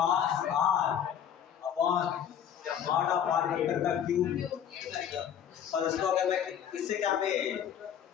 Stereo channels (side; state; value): right; quieter; 9.1 dB